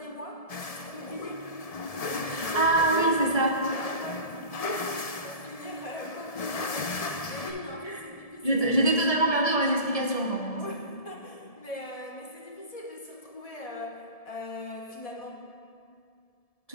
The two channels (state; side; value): late; right; 1.7 ms